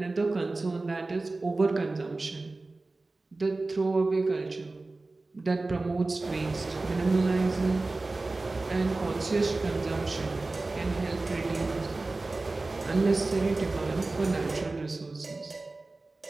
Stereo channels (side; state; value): left; quieter; 3.3 dB